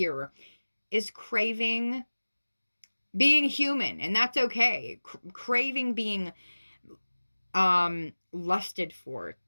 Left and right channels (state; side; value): inverted; both; correlation -1.00